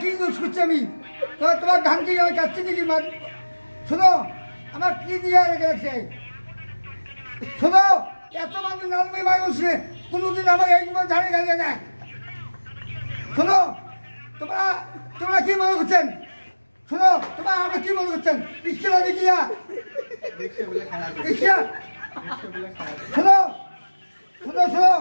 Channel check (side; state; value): both; inverted; correlation -1.00